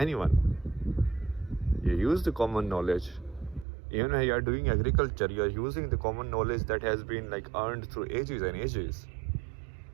You use the common knowledge. Even when you are doing agriculture, you are using the common knowledge that has been like earned through ages and ages.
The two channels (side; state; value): left; drops out; at 3.7 s